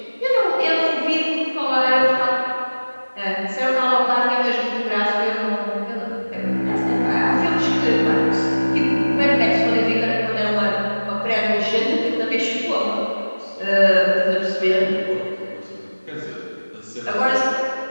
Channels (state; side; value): inverted; both; correlation -1.00